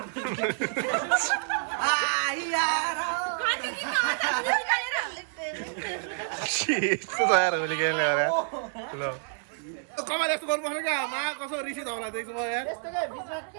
यस्तो तयार होली खेल्ने अरे ल कमाल यस्तो गर्नुपर्छ क्या मा कसो रिसिद होला देख्छु म यार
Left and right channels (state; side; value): silent; left; digital silence